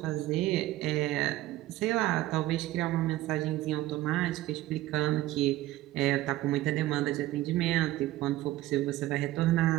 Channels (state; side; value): quieter; left; 16.1 dB